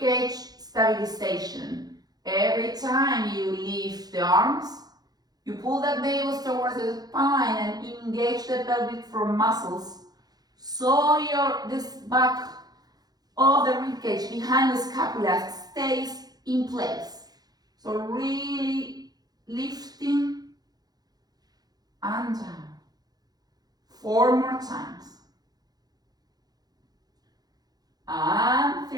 stabilization. Every time you lift the arms, you pull the navel towards the spine and engage the pelvic floor muscles, so this back of the ribcage behind the scapula stays in place. So really lifting and down. 4 more times. And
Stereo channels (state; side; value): late; left; 0.19 ms